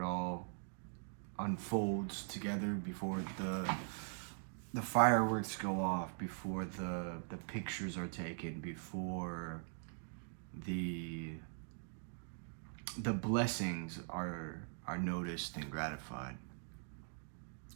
it all unfolds together, before the fireworks go off, before the pictures are taken, before the blessings are noticed and gratified.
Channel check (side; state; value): left; silent; digital silence